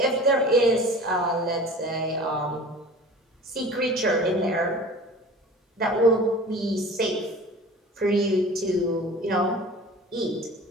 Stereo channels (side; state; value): both; normal; correlation 0.41